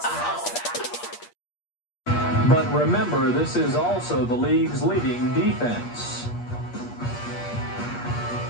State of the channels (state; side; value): late; right; 8.5 ms